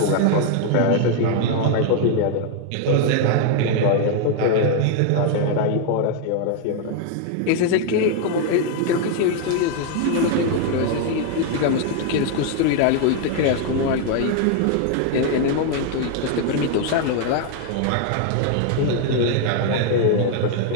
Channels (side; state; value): both; different; correlation 0.00